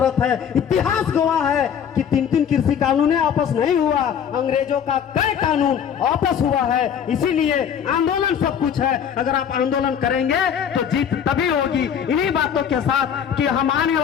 है। इतिहास गवाह है कि 3 कृषि कानून आपस नहीं हुआ, अंग्रेजों का कई कानून आपस हुआ है। इसीलिए आंदोलन सब कुछ है। अगर आप आंदोलन करेंगे तो जीत तभी होगी। इन्हीं बातों के साथ कि हम आने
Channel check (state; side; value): quieter; right; 8.2 dB